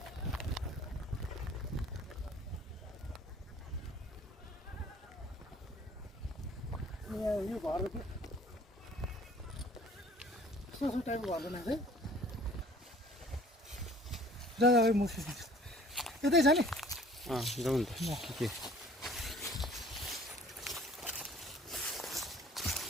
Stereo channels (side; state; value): both; normal; correlation 0.52